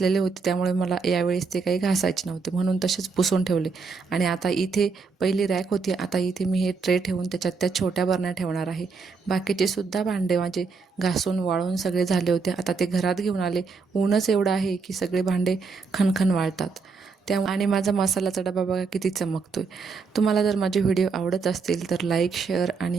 होते त्यामुळे मला यावेळेस ते काही घासायचे नव्हते, म्हणून तसेच पुसून ठेवले. आणि आता इथे पहिली रॅक होती, आता इथे मी हे ट्रे ठेवून त्याच्यात त्या छोट्या बरण्या ठेवणार आहे. बाकीचे सुद्धा भांडे माझे घासून वाळून सगळे झाले होते. आता ते घरात घेऊन आले. ऊनच एवढं आहे की सगळे भांडे खणखण वाळतात. आणि माझा मसाल्याचा डबा बघा किती चमकतोय. तुम्हाला जर माझे व्हिडिओ आवडत असतील तर लाईक, शेअर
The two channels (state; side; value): quieter; left; 4.8 dB